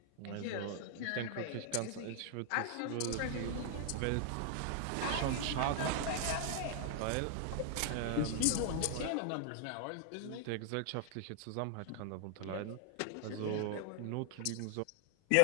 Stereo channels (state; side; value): different; both; correlation 0.00